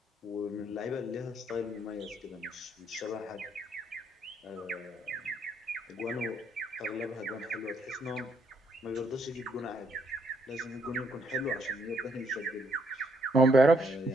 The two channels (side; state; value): both; normal; correlation 0.72